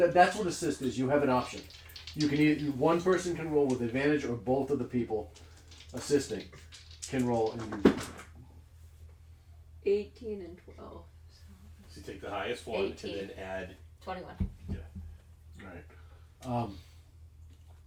what assist is. You have an option. You can either one person can roll with advantage, or both of the people assisting can roll. And you, 18 and 12. So you take the highest one 18. and then add. 21. all right.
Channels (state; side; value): identical; both; correlation 1.00